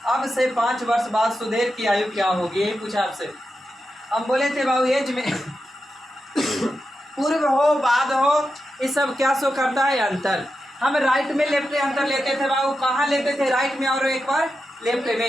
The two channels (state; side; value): normal; both; correlation 0.89